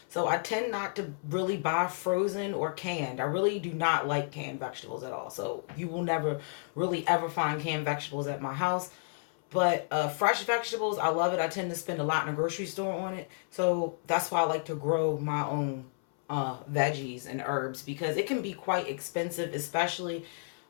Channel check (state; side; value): silent; right; 57 dB below the other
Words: so I tend not to really buy frozen or canned. I really do not like canned vegetables at all, so you will never really ever find canned vegetables at my house. But fresh vegetables, I love it. I tend to spend a lot in a grocery store on it, so that's why I like to grow my own veggies and herbs, because it can be quite expensive, especially